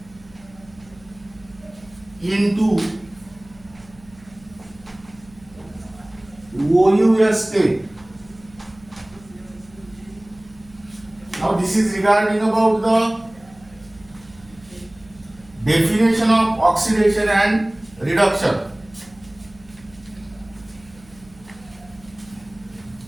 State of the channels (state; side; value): noise; right; hum, 25 dB below the sound